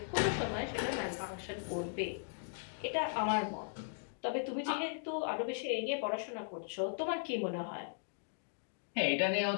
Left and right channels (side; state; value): right; silent; digital silence